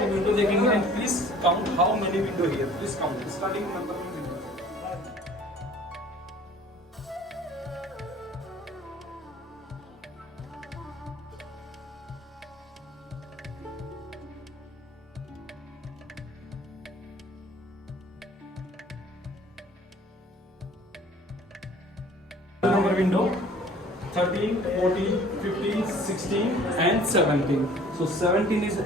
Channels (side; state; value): both; normal; correlation 0.51